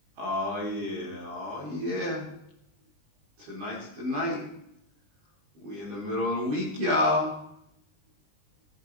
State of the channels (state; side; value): late; left; 20 ms